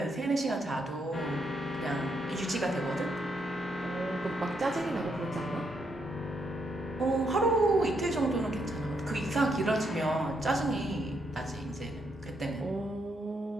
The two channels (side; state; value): both; normal; correlation 0.77